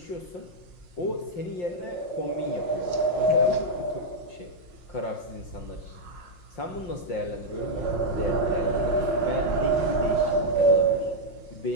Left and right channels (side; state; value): right; late; 5.5 ms